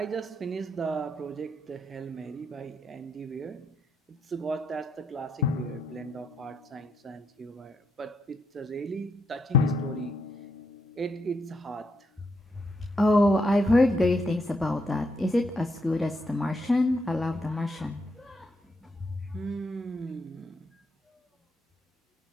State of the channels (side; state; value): both; normal; correlation 0.78